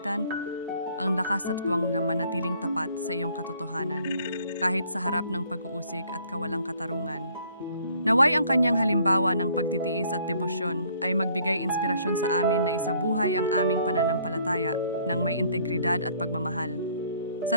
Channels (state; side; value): inverted; both; correlation -0.61